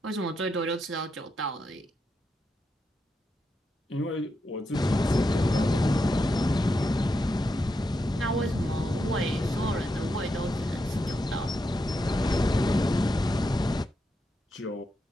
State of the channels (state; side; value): normal; both; correlation 0.84